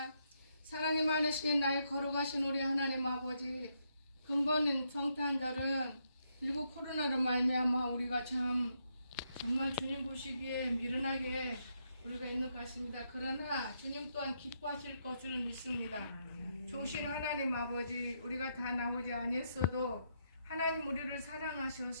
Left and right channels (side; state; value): both; inverted; correlation -0.78